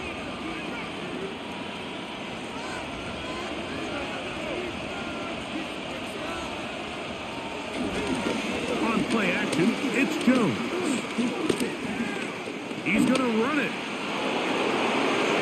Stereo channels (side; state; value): both; identical; correlation 1.00